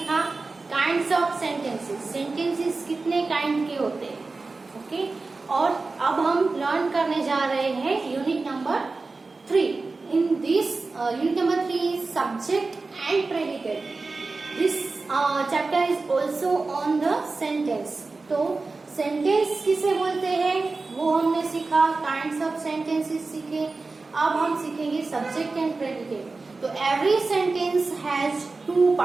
काइंड्स ऑफ सेंटेंसेस। सेंटेंसेस कितने काइंड के होते हैं, ओके। और अब हम लर्न करने जा रहे हैं unit number 3. In this unit number 3 is subject and predicate. This chapter is also on the sentence. तो सेंटेंस किसे बोलते हैं वो हमने सीखा, काइंड्स ऑफ सेंटेंसेस सीखे। अब हम सीखेंगे सब्जेक्ट एंड प्रेडिकेट। तो एवरी सेंटेंस हैज 2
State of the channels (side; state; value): left; quieter; 3.7 dB